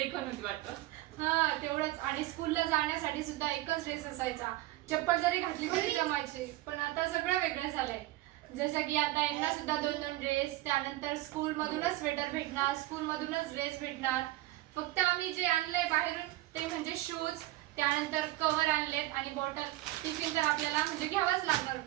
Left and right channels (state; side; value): quieter; left; 17.3 dB